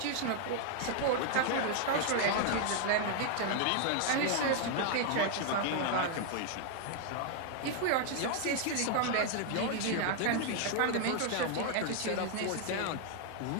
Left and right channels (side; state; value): both; different; correlation 0.00